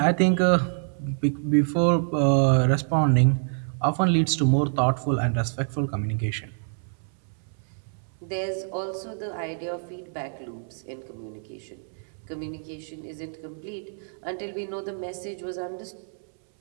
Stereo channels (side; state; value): left; silent; 61 dB below the other